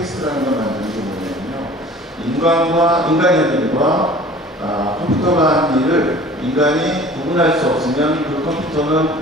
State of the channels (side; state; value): both; normal; correlation 0.46